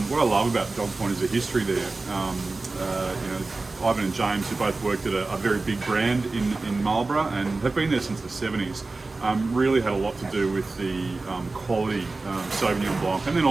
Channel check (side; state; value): left; quieter; 3.5 dB